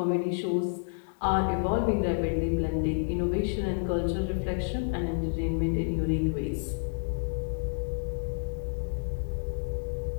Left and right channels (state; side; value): silent; right; digital silence